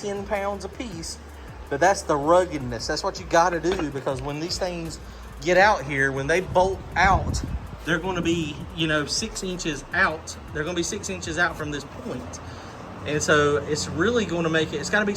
pounds a piece, but that's the ruggedness. That's what you got to do, because when these things get out here, when they bolt out, they're going to be, you know, 6 inches out. They're going to be 6 inches out from this point. And so it's really going to make it, it's got to be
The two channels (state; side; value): identical; both; correlation 1.00